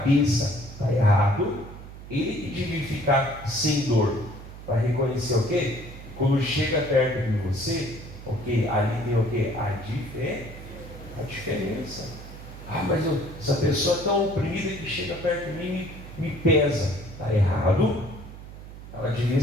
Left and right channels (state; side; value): noise; right; hum, 14 dB below the sound